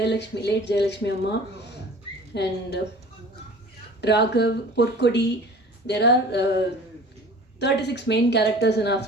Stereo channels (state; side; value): normal; both; correlation 0.44